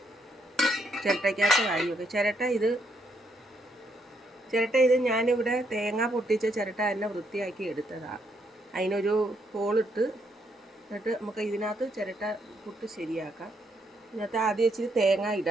ചിരട്ടയ്ക്കകത്ത് വാരി വെക്കും. ചിരട്ട ഇത് ഞാനിവിടെ തേങ്ങ പൊട്ടിച്ച ചിരട്ട തന്നെ വൃത്തിയാക്കി എടുത്തതാണ്. അതിനൊരു ഹോളിട്ട് എന്നിട്ട് നമുക്ക് ഇതിനകത്ത് ചിരട്ട പുട്ട് ശരിയാക്കാം. ഇതിനകത്ത് ആദ്യം ഇച്ചിരി തേങ്ങ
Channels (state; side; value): normal; both; correlation 0.75